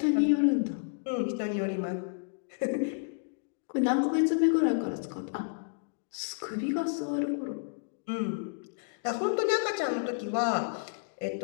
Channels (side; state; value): right; silent; digital silence